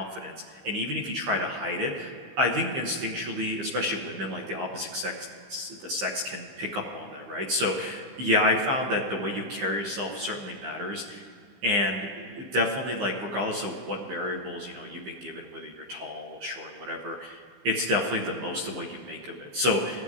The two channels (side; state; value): left; late; 15 ms